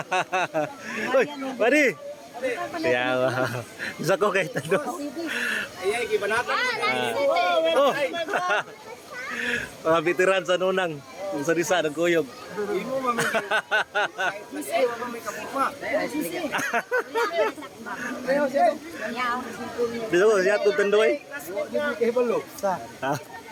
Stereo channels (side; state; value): both; identical; correlation 1.00